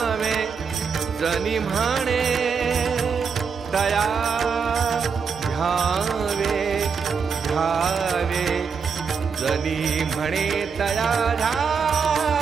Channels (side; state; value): left; quieter; 5.9 dB